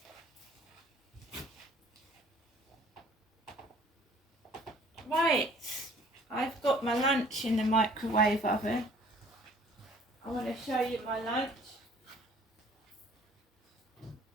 Right, I've got my lunch in the microwave oven. I want to show you my lunch.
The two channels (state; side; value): normal; both; correlation 0.54